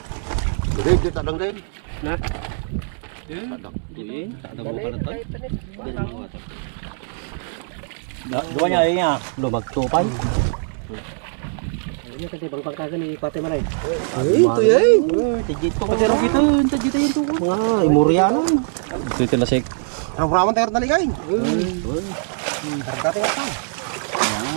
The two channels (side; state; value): left; silent; 64 dB below the other